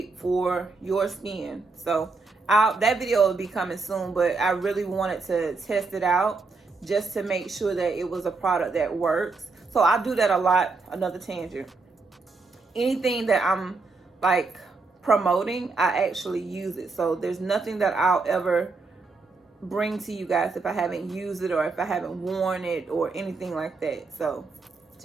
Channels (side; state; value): left; quieter; 4.0 dB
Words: for your skin. So that video will be coming soon, but I really wanted to test it out just to make sure that it was a product that works. So I do that a lot. Another tangent. Anything that I'm like promoting, I actually use it. So there's nothing that I'll ever bring to you guys if I haven't used it or if I haven't worn it or anything like that. So